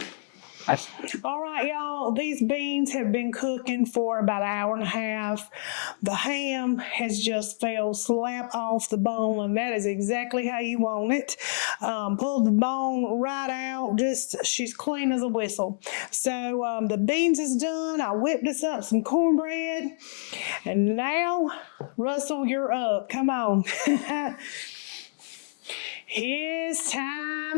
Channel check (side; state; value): right; silent; digital silence